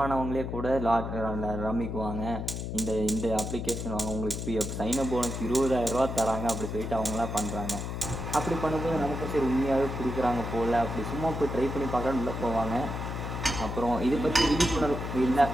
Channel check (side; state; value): left; noise; hum, 5 dB below the sound